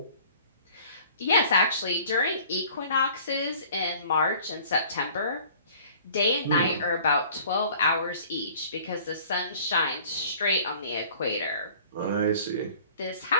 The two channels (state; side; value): inverted; both; correlation -0.50